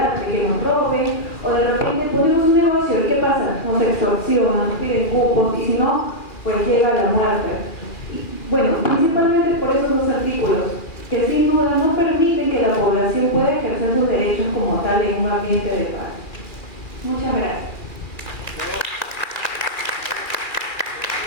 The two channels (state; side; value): late; right; 2.4 ms